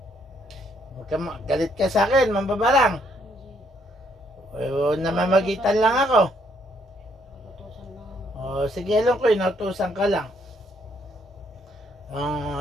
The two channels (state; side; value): normal; both; correlation 0.70